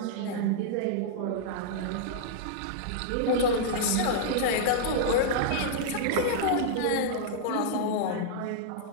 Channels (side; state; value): both; different; correlation -0.01